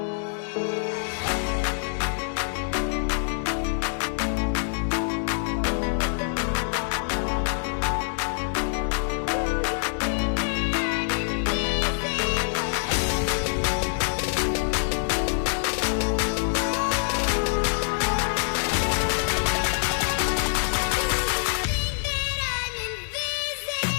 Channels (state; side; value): silent; right; 61 dB below the other